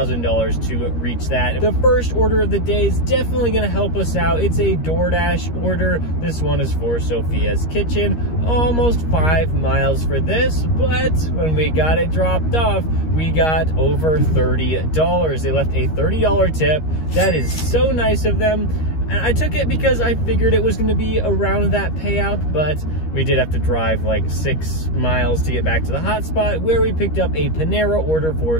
to reach that. The first order of the day is definitely gonna help us out. It's a DoorDash order. This one is for Sophia's Kitchen. Almost 5 miles for this, but when we got it dropped off, we got over $30. They left a $30 tip. That is so nice of them. And I took it because I figured it was going to be around that payout, but we did have to drive like 6 miles to get back to the hotspot where we picked up a Panera order for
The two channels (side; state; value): right; late; 13 ms